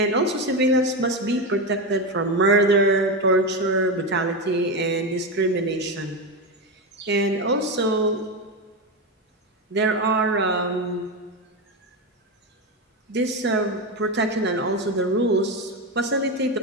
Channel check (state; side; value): normal; both; correlation 0.14